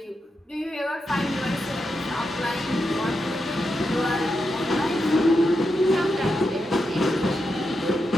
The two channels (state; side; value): normal; both; correlation 0.86